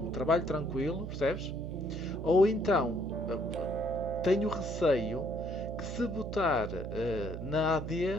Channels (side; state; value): right; noise; hum, 7 dB below the sound